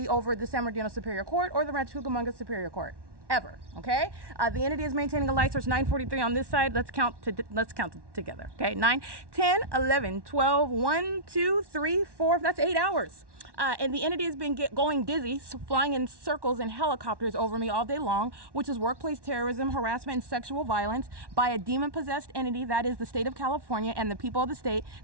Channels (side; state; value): left; late; 1.1 ms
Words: over the San Bernardino Superior Court or the Rancho Cucamonga Superior Court. Ever. Okay. The entity is maintaining a light source 9:43 on this side. Let's count together. Okay. 9, 10, 11, 12, 1, 2, 3, 4. That's 8 hours. And the entity has been going dizzy, flying in circles in helicopters over me all day long, which is workplace terrorism, harassment, and sexual violence by a demon-possessed entity, that is the state of California, and the people of the state